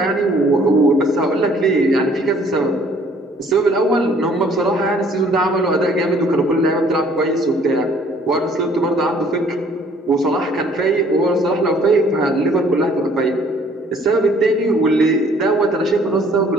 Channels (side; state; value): both; normal; correlation 0.58